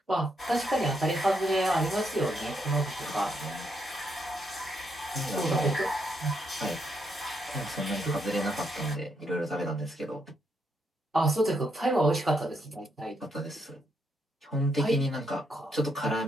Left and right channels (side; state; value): both; normal; correlation 0.77